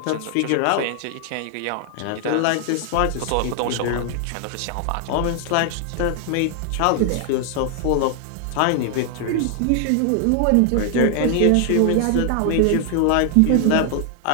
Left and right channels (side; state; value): both; different; correlation 0.00